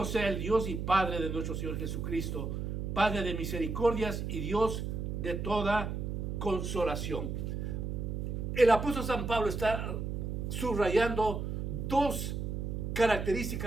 sea el Dios y Padre de nuestro Señor Jesucristo, Padre de misericordias y Dios de toda consolación. El apóstol San Pablo está subrayando dos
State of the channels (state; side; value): noise; right; hum, 3 dB below the sound